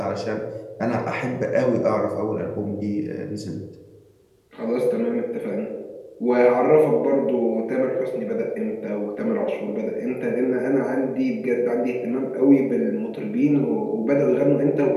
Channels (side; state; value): both; identical; correlation 1.00